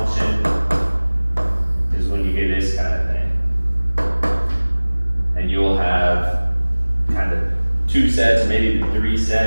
is when you get this kind of thing. And you'll have kind of 2 sets, or maybe 3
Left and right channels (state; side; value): inverted; both; correlation -1.00